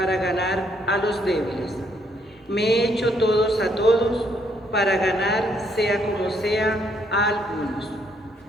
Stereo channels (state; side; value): normal; both; correlation 0.71